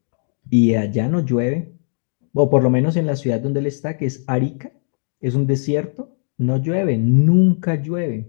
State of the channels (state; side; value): silent; right; digital silence